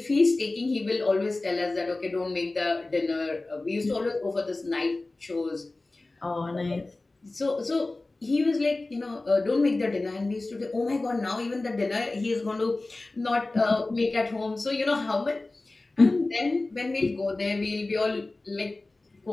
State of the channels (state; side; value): quieter; right; 3.1 dB